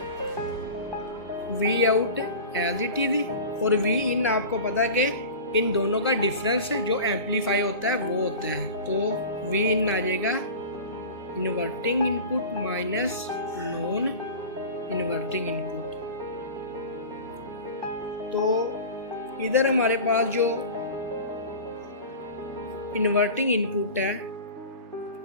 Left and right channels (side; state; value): both; inverted; correlation -0.34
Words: V out as it is और V इन आपको पता है कि इन दोनों का डिफरेंस जो एम्पलीफाई होता है वो होता है। तो V इन आ जाएगा inverting input minus non inverting input. तो इधर हमारे पास जो इन्वर्टिंग इनपुट है